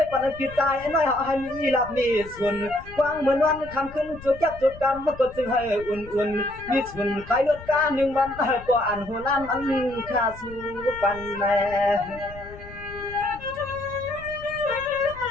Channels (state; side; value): noise; left; rumble, 17 dB below the sound